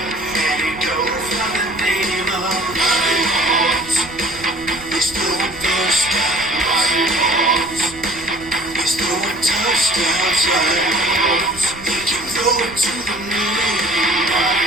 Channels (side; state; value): right; noise; rumble, 19 dB below the sound